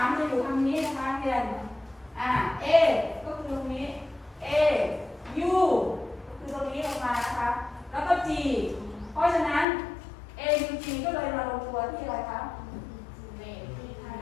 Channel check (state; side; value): drops out; right; at 9.7 s